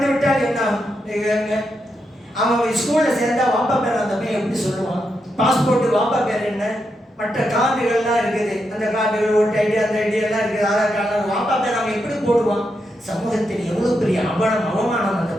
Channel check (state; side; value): normal; both; correlation 0.84